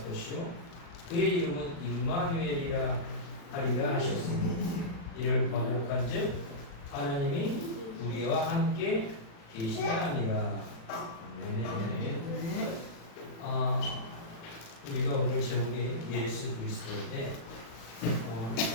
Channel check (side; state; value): right; late; 36 ms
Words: 것이요 그의 이름은 임마누엘이라 하리라 하셨으니 이를 번역한즉 하나님이 우리와 함께 계시다 하니라. 네. 우리가 오늘 제목이 예수 그리스도인데